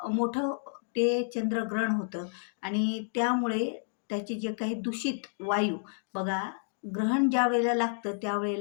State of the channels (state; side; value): silent; right; digital silence